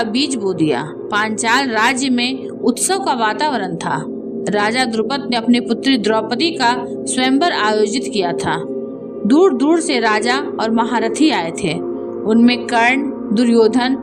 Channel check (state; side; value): identical; both; correlation 1.00